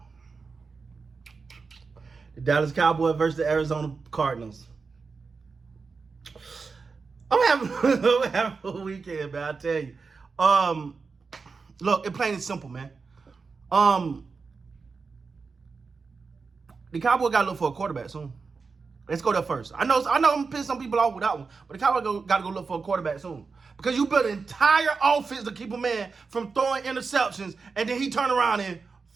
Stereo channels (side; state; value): left; quieter; 4.7 dB